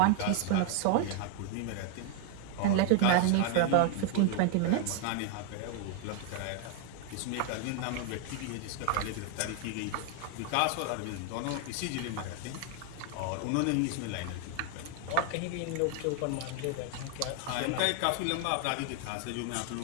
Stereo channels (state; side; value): different; both; correlation 0.00